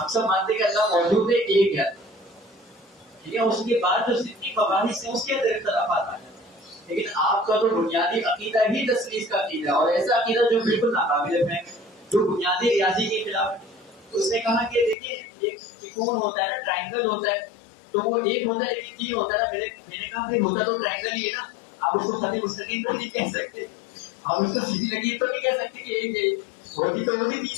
سب مانتے ہیں کہ اللہ موجود ہے، ایک ہے. ٹھیک ہے، اس کے بعد جو جتنی مباحث ہیں اس کے اندر اختلافات آ جاتے ہیں. لیکن آپ کا تو بنیادی عقیدہ ہی تثلیث کا عقیدہ ہے، اور ایسا عقیدہ جو بالکل ناقابل فہم، جو بنیادی ریاضی کے خلاف ہے. اس نے کہا کہ دیکھیں ایک ترکون ہوتا ہے نا، ٹرائنگل ہوتا ہے، تو وہ ایک ہوتا ہے لیکن 3 ہوتا ہے نا. میں نے کہا بھائی ہوتا تو ٹرائنگل ہی ہے نا، آپ اس کو خط مستقیم تو نہیں کہہ سکتے، آپ اس کو سیدھی لکیر تو نہیں کہہ سکتے کہ ایک ہوتی تو وہ بھی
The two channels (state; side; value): drops out; right; at 15.0 s